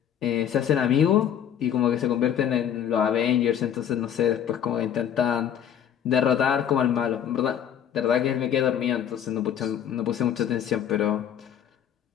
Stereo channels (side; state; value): right; quieter; 9.4 dB